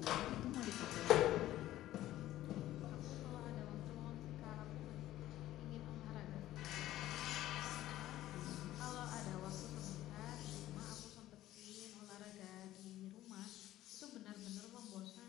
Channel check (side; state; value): right; quieter; 14.4 dB